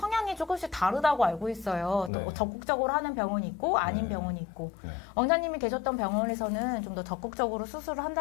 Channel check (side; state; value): right; drops out; at 2.1 s